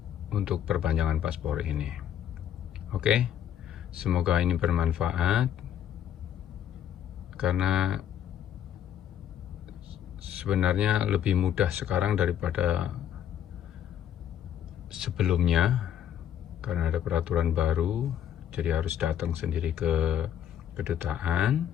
untuk perpanjangan paspor ini. Oke, semoga ini bermanfaat, karena sebenarnya lebih mudah sekarang daripada sebelumnya, karena ada peraturan baru. Jadi harus datang sendiri ke kedutaan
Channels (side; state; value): right; quieter; 10.0 dB